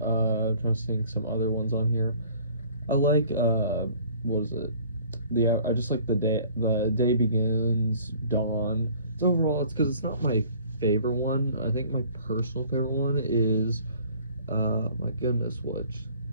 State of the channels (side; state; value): both; inverted; correlation -0.52